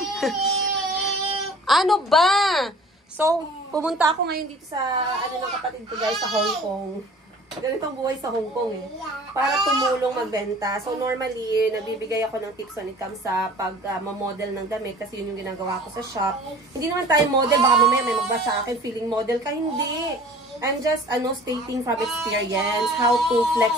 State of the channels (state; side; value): normal; both; correlation 0.46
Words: Ano ba? So, pumunta ako ngayon dito sa, ano ng kapatid ko guys, sa Hong Kong. Ganitong buhay sa Hong Kong eh. Para tumulong magbenta. So, normally, nabibigay ako ng tips when it comes sa pag-model ng damit kasi yun yung ginagawa ko sa shop. Hindi naman tayo model. Baka mamaya may magbasa sa akin feeling model ka. Hindi. I'm just, stating from experience how to flex